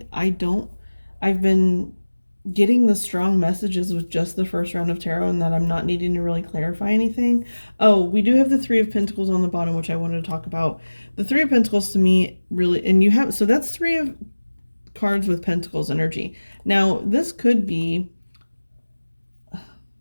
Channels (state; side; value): inverted; both; correlation -1.00